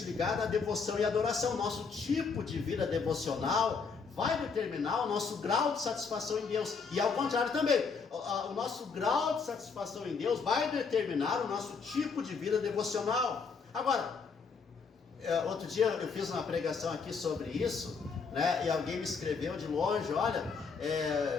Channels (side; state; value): right; quieter; 5.2 dB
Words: ligada à devoção e adoração. Nosso tipo de vida devocional vai determinar o nosso grau de satisfação em Deus. E ao contrário também, o nosso grau de satisfação em Deus vai determinar o nosso tipo de vida devocional. Agora, outro dia eu fiz uma pregação aqui sobre isso, né, e alguém me escreveu de longe: olha,